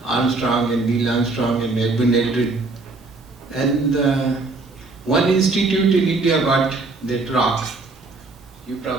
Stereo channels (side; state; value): left; quieter; 3.5 dB